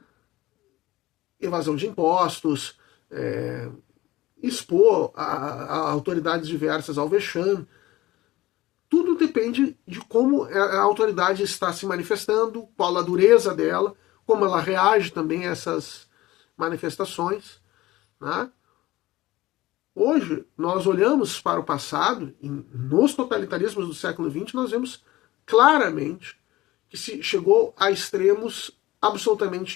evasão de impostos, expor a autoridades diversas ao vexame. Tudo depende de como a autoridade está se manifestando, qual a dureza dela, como ela reage também a essas manifestações, né? Hoje, nós olhamos para o passado, e nos totalitarismos do século XX, nós vemos claramente que se chegou a extremos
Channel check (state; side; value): quieter; right; 17.6 dB